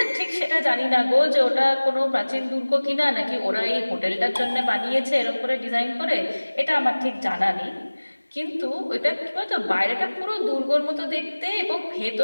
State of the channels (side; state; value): both; inverted; correlation -1.00